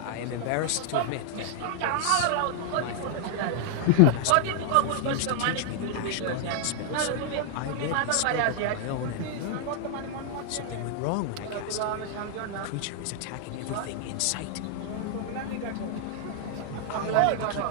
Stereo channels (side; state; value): both; different; correlation 0.00